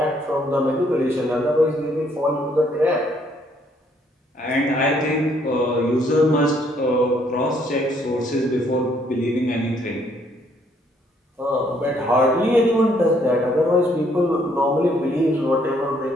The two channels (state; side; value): normal; both; correlation 0.67